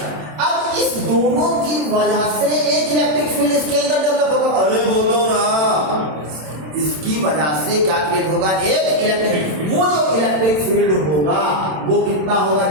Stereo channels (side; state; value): left; late; 27 ms